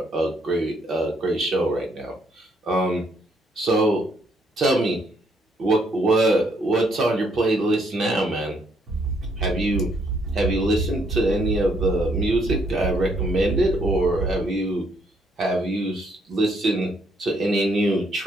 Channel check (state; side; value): normal; both; correlation 0.71